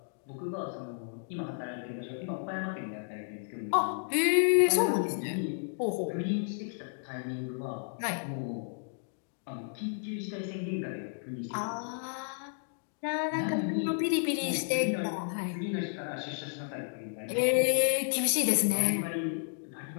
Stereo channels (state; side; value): silent; right; digital silence